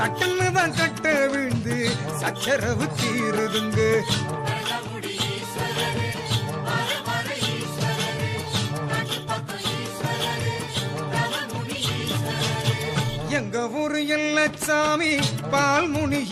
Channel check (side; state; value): both; identical; correlation 1.00